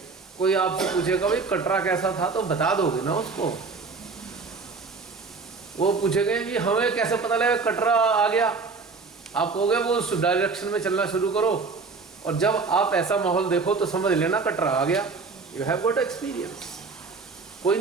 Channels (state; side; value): quieter; left; 4.4 dB